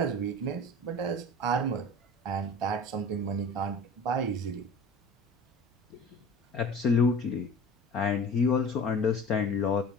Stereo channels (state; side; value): normal; both; correlation 0.39